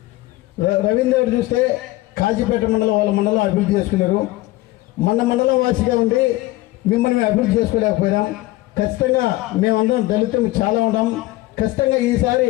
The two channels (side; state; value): right; quieter; 18.4 dB